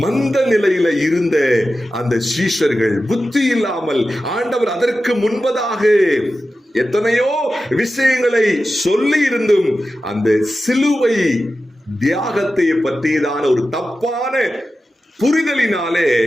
மந்த நிலையில இருந்த அந்த சீஷர்கள் புத்தி இல்லாமல், ஆண்டவர் அதற்கு முன்பதாக எத்தனையோ விஷயங்களை சொல்லி இருந்தும் அந்த சிலுவை தியாகத்தை பற்றியதான ஒரு தப்பான புரிதலினாலே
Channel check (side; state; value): both; normal; correlation 0.93